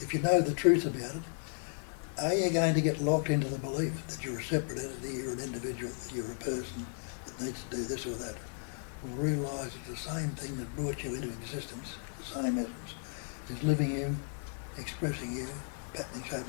if you know the truth about it, are you going to get locked into the belief that you're a separate entity, you're an individual, that you're a person that needs to do this or that? Or realise that the same thing that brought you into existence, the same essence, is living you, expressing you, patterning,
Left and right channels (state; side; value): silent; right; 55 dB below the other